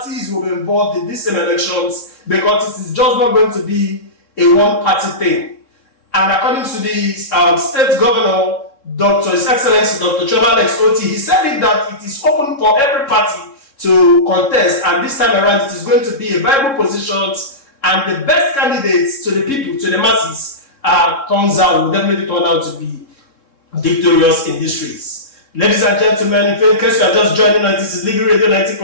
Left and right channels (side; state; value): right; late; 3.6 ms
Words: will be involved in these same elections, because it is just not going to be a one-party thing. And according to the state governor, His Excellency Dr. Chema Alex Oti, he said that it is open for every party to contest, and this time around it is going to be a viable positions, and the best candidates to the people, to the masses, turns out will definitely turn out to be victorious in this race. Ladies and gentlemen, in case you are just joining us, this is Living Radio